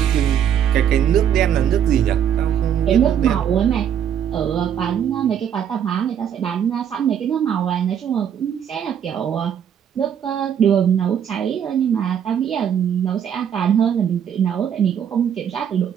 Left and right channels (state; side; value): quieter; left; 8.9 dB